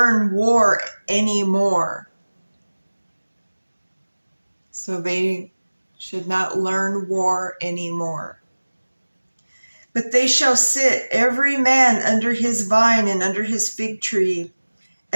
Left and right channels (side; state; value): both; inverted; correlation -1.00